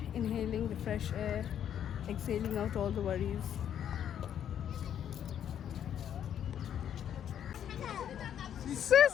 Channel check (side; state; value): right; quieter; 9.6 dB